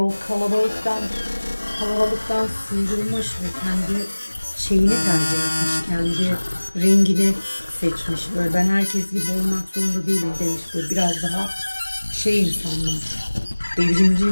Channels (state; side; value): inverted; both; correlation -1.00